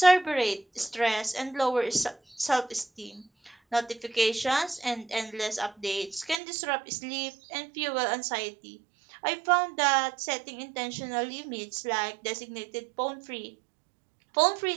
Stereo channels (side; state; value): left; drops out; at 6.4 s